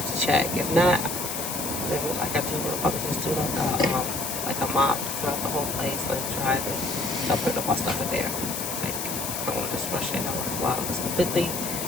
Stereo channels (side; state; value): left; noise; hiss, 4 dB below the sound